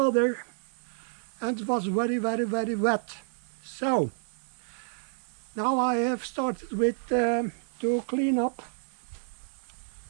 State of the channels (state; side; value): silent; left; 58 dB below the other